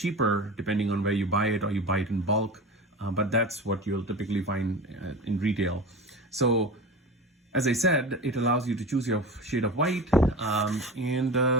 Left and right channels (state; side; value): normal; both; correlation 0.31